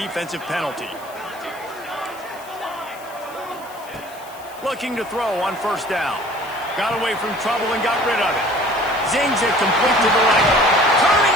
penalty. Looking to throw on 1st down. Got away from trouble and got rid of it. Zings it complete to the right. Turning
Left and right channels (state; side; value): noise; left; hiss, 21 dB below the sound